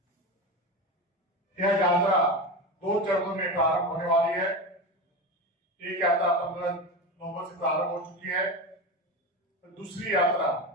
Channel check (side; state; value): both; normal; correlation 0.22